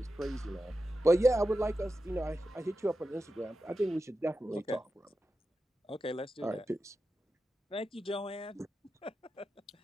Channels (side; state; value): both; normal; correlation 0.91